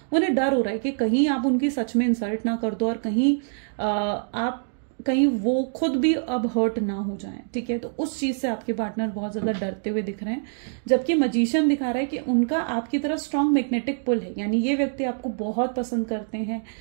उन्हें डर हो रहा है कि कहीं आप उनकी सच में इंसल्ट ना कर दो और कहीं वो खुद भी अब हर्ट ना हो जाएं, ठीक है। तो उस चीज से आपके पार्टनर बहुत ज्यादा डरते हुए दिख रहे हैं। जबकि मजीशियन दिखा रहा है कि उनका आपकी तरफ स्ट्रांग मैग्नेटिक पुल है, यानी ये व्यक्ति आपको बहुत पसंद करते हैं,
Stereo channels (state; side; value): silent; left; digital silence